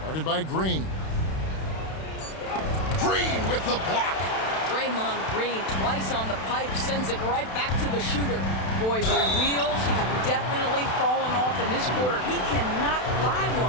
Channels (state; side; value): late; right; 32 ms